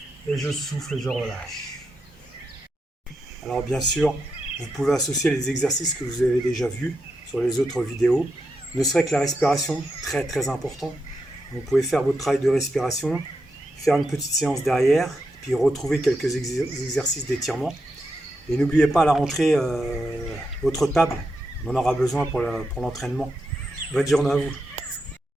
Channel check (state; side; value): normal; both; correlation 0.85